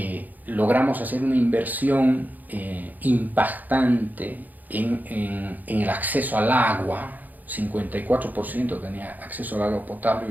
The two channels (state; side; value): late; left; 0.083 ms